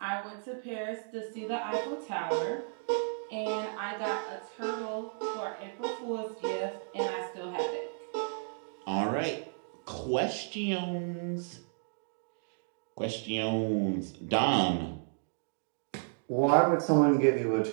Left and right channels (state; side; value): silent; left; digital silence